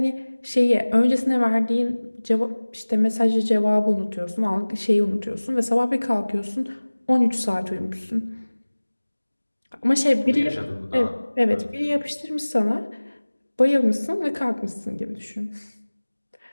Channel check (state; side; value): inverted; both; correlation -1.00